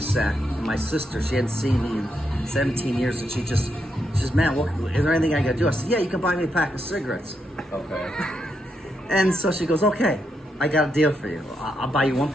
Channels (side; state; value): both; normal; correlation 0.81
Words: And my sister, she hadn't seen me in 17 years, and she says, man, is there anything I got to do? I said, yeah, you can buy me a pack of cigarettes. Okay. And so she goes, okay, I got a deal for you. I'll buy you 1